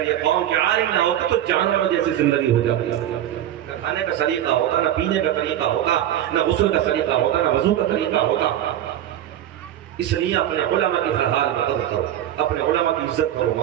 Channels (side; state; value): left; quieter; 11.8 dB